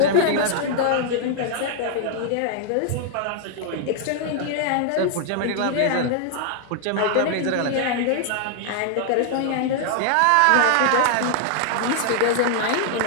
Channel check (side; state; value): both; different; correlation 0.00